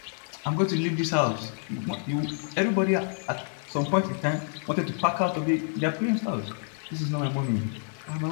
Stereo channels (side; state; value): right; silent; 58 dB below the other